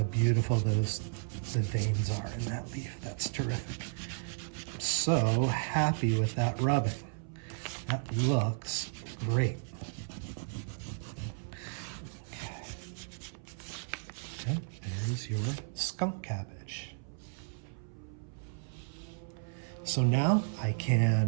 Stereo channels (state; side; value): silent; left; 55 dB below the other